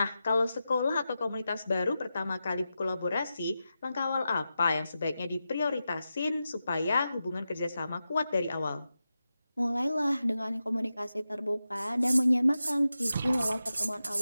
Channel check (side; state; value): both; inverted; correlation -0.91